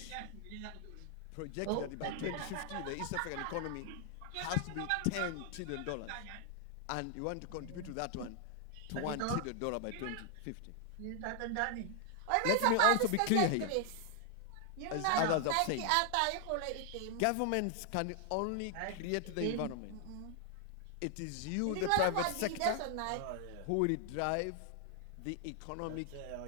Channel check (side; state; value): both; different; correlation 0.00